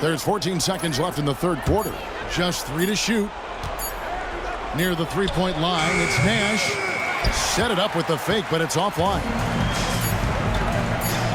There's 14 seconds left in the third quarter. Just 3 to shoot. Near the three-point line, it's Nash. Set it up with the fake, but it's offline.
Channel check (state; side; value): identical; both; correlation 1.00